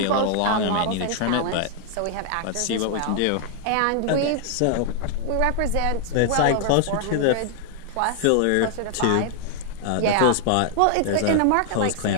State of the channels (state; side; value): different; both; correlation 0.00